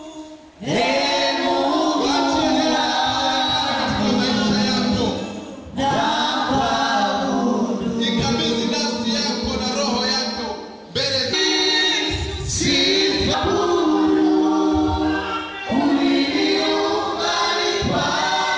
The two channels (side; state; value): both; identical; correlation 1.00